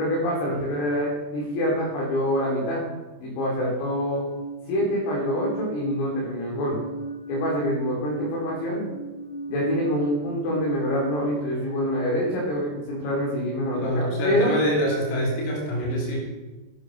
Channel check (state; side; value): late; right; 27 ms